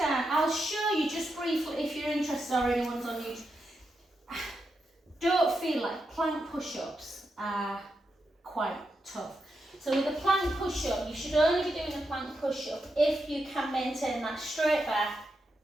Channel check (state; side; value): normal; both; correlation 0.85